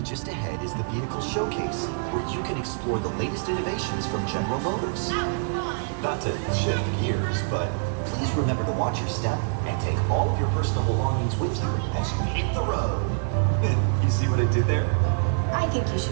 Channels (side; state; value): left; silent; digital silence